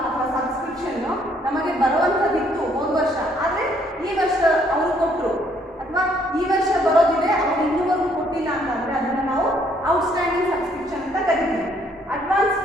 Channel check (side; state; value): both; normal; correlation 0.66